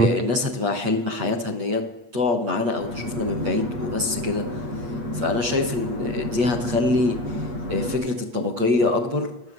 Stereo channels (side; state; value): left; late; 8.4 ms